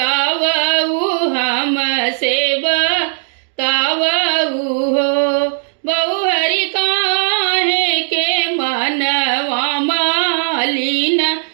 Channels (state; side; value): silent; left; digital silence